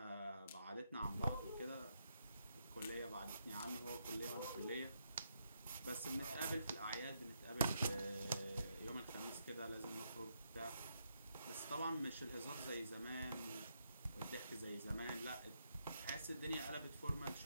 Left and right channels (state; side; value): inverted; both; correlation -0.79